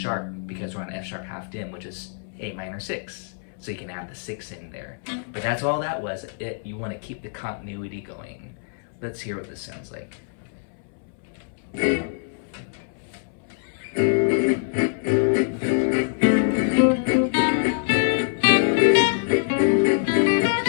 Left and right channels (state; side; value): silent; right; 62 dB below the other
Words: because we're on F sharp half dim, which is A minor 6. so you can add the 6 in there. But that's all that was. You want to keep the continuity going. Let's hear what this sounds like.